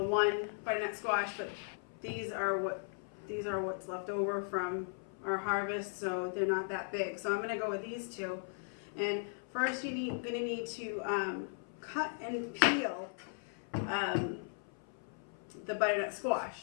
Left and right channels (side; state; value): right; silent; 53 dB below the other